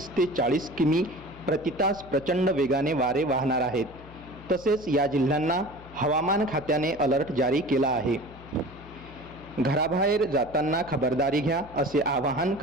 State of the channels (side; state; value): left; noise; hum, 19 dB below the sound